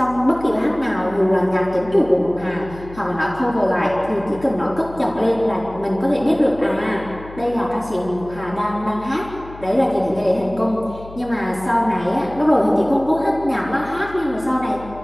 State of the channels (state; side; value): noise; left; hum, 17 dB below the sound